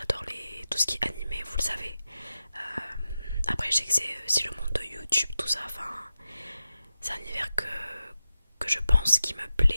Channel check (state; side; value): inverted; both; correlation -0.91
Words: tout ce qui est animé, vous le savez. Après je sais que c'est aussi le monde de YouTube, tout ça, enfin c'est un univers que je pense qui me